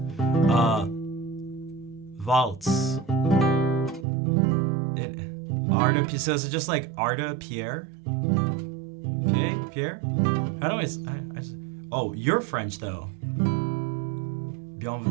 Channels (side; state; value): left; drops out; at 4.0 s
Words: Waltz. Arda, so is it just like Arda Pierre? Okay, Pierre? How do I just, oh, you're French though.